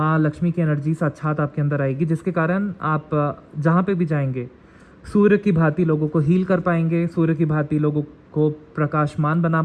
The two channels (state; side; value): identical; both; correlation 1.00